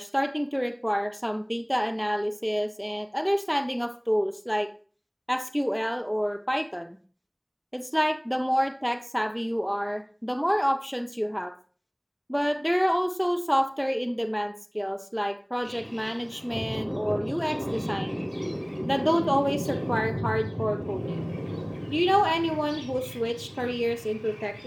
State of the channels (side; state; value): both; identical; correlation 1.00